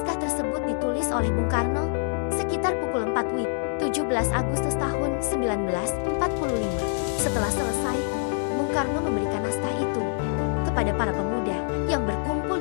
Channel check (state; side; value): silent; right; 61 dB below the other